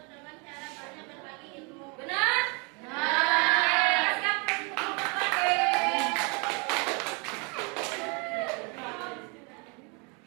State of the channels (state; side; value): quieter; left; 32.3 dB